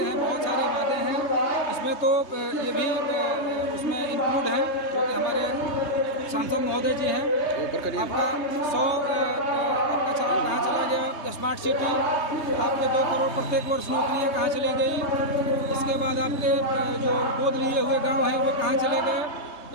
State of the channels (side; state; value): right; late; 3.3 ms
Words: बहुत सारे वादे हैं। इसमें तो ये भी उसमें इंक्लूड है जो कि हमारे सांसद महोदय जी हैं। आपका 100 आपका कहाँ चला गया स्मार्ट सिटी, आपके 2 करोड़ प्रत्येक वर्ष नौकरियाँ कहाँ चली गई। इसके बाद आपके जो गोद लिए हुए गांव हैं वो कहाँ चले गए।